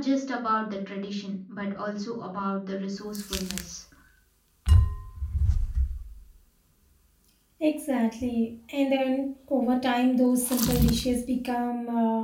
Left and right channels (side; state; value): both; identical; correlation 1.00